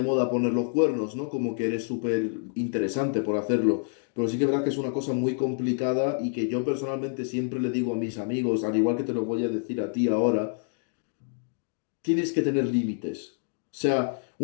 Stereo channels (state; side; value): silent; right; 60 dB below the other